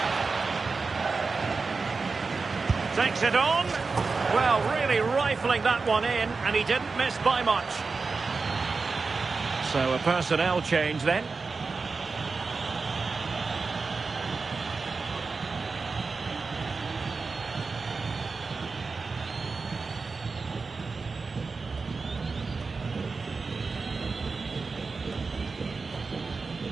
Takes it on. Well, really rifling that one in, and he didn't miss by much. So a personnel change then.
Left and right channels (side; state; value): left; quieter; 4.3 dB